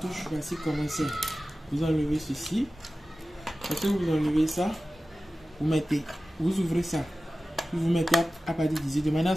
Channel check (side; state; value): both; normal; correlation 0.95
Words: voici comment c'est. Vous enlevez ceci. Lorsque vous enlevez ça, vous mettez, vous ouvrez ça. Puis vous mettez à partir d'ici, de manière à